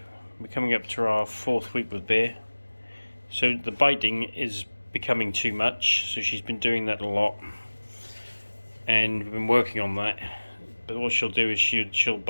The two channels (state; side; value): inverted; both; correlation -1.00